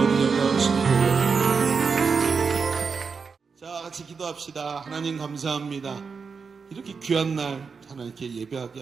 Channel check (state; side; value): quieter; left; 5.3 dB